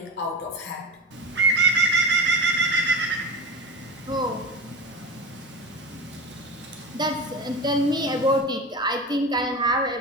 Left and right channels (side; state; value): both; normal; correlation 0.25